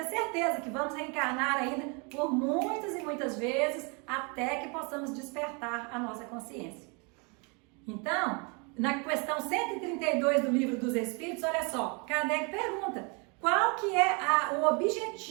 certeza que vamos reencarnar ainda por muitas e muitas vezes até que possamos despertar a nossa consciência. Então, na questão 132 do Livro dos Espíritos, olha só, Kardec pergunta, qual que é o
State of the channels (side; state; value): left; quieter; 33.1 dB